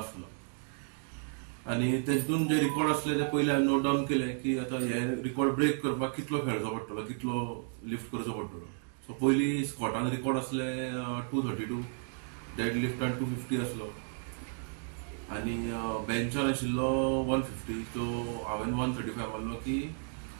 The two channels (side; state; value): left; silent; 55 dB below the other